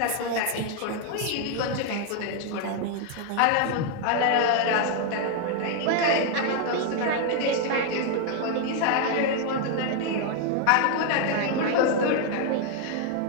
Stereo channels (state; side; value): different; both; correlation 0.00